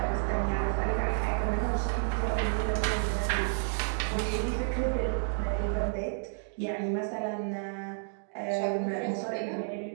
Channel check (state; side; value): silent; left; digital silence